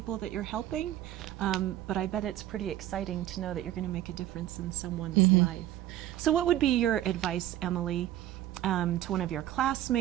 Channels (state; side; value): quieter; left; 13.3 dB